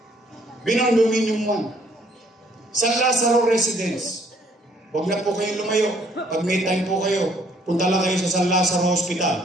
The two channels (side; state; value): both; normal; correlation 0.64